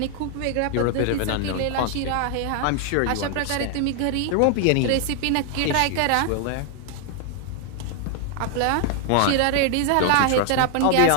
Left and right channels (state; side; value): different; both; correlation 0.00